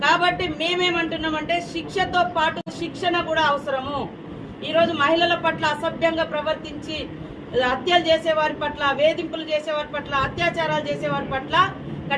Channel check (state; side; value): identical; both; correlation 1.00